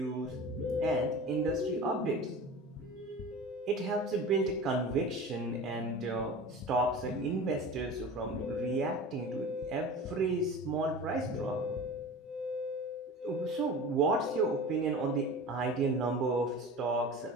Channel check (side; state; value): both; normal; correlation 0.35